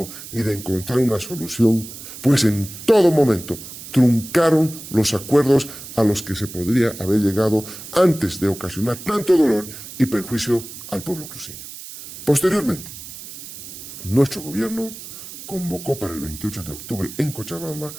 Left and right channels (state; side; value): noise; right; hiss, 13 dB below the sound